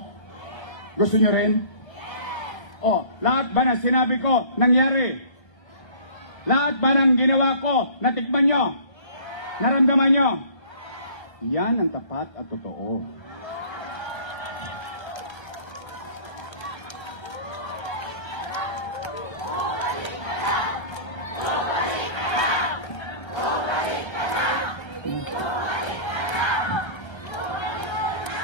Gusto nyo rin? O, lahat ba ng sinabi ko, nangyari? Lahat ba ng ginawa ko, natikman nyo? Naramdaman nyo? Yan ang tapat at totoo.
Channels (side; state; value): right; late; 1.3 ms